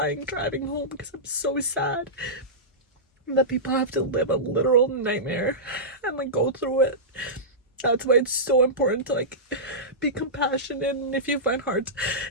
driving home because I'm so sad that people have to live a literal nightmare and like go through it. That's why it's so important to like be compassionate. And if you find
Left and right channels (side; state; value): both; normal; correlation -0.16